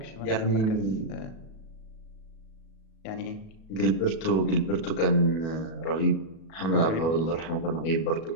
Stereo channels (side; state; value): right; late; 37 ms